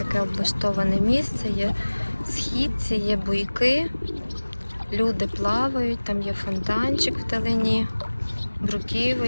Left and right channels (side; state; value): both; inverted; correlation -1.00